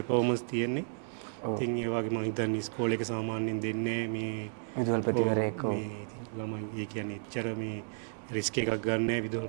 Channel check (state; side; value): silent; left; digital silence